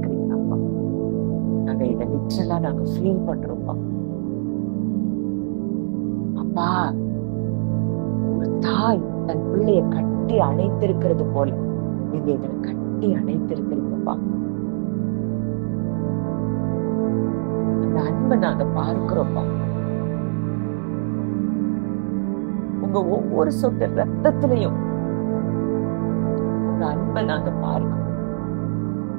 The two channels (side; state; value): left; silent; 64 dB below the other